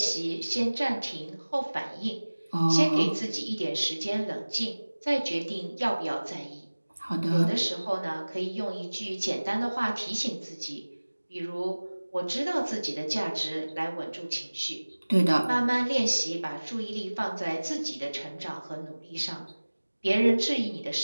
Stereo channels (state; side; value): inverted; both; correlation -1.00